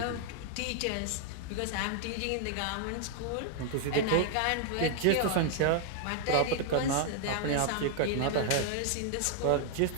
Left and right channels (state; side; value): different; both; correlation 0.00